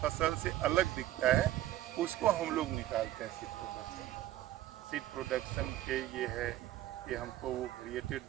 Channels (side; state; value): left; quieter; 14.3 dB